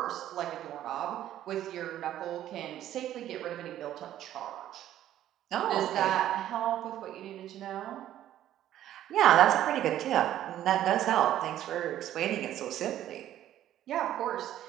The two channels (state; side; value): quieter; left; 12.3 dB